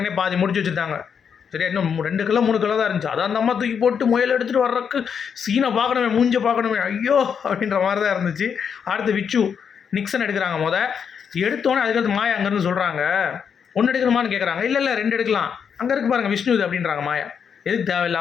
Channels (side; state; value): right; quieter; 7.1 dB